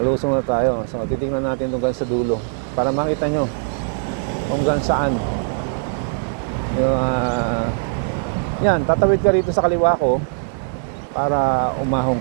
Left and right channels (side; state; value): left; silent; 65 dB below the other